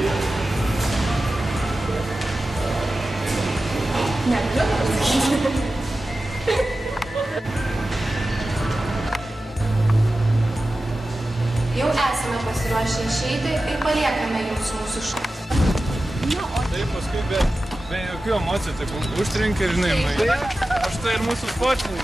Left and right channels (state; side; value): normal; both; correlation 0.94